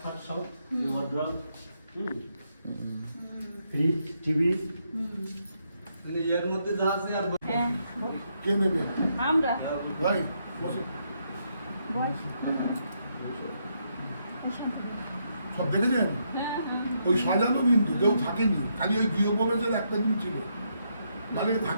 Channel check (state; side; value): inverted; both; correlation -0.78